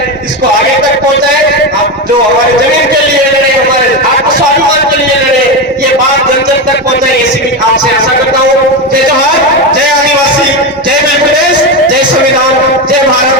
इसको आगे तक पहुंचाए। आप जो हमारे जमीन के लिए लड़े, हमारे आत्मस्वाभिमान के लिए लड़े, ये बात जन जन तक पहुंचाए, ऐसी भी आपसे आशा करता हूँ। जय जोहार, जय आदिवासी, जय मध्य प्रदेश, जय संविधान, जय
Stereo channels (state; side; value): normal; both; correlation 0.15